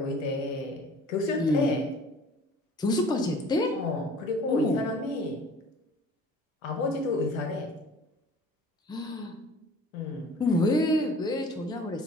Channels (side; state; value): both; normal; correlation 0.48